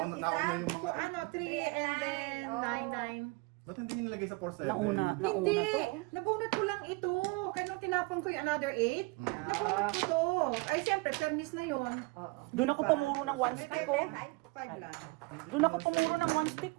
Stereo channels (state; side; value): quieter; left; 26.2 dB